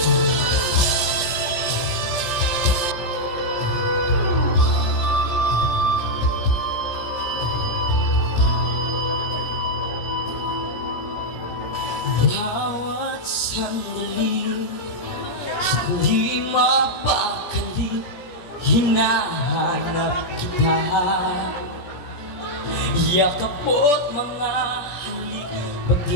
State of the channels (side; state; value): right; late; 17 ms